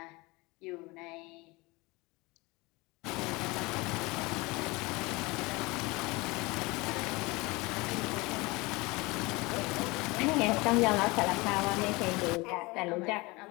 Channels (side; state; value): right; quieter; 23.9 dB